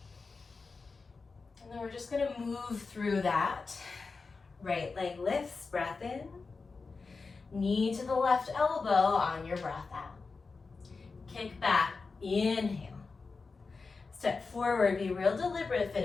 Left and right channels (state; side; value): quieter; right; 4.3 dB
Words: And then we're just gonna move through that. Right leg lifts, breath in. Knee to the left elbow on your breath out. Kick back, inhale. Step forward, be real deliberate.